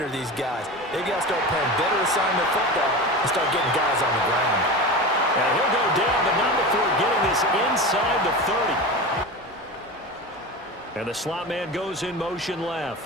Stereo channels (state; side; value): normal; both; correlation 0.27